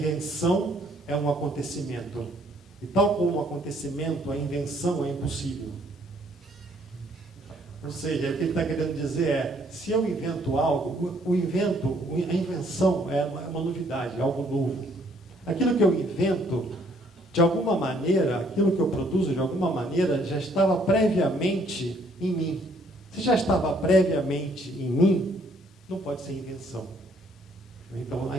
é um acontecimento. E tal como um acontecimento, a invenção é impossível. Ou seja, o que ele está querendo dizer é: se eu invento algo, a invenção é uma novidade, é algo novo. Aquilo que eu invento, de alguma maneira, aquilo que eu produzo, de alguma maneira, já estava previamente em mim. Se já estava previamente em mim, não pode ser invenção. Então, a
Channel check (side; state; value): both; normal; correlation 0.65